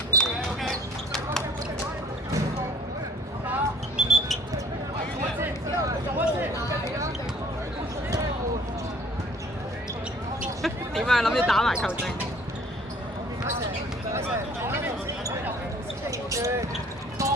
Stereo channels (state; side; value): normal; both; correlation 0.55